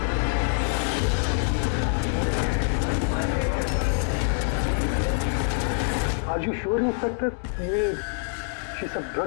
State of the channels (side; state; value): right; silent; 61 dB below the other